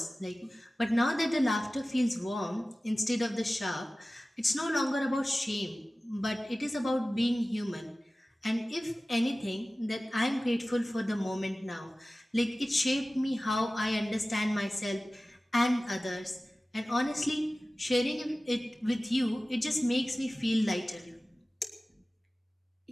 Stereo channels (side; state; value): both; normal; correlation 0.97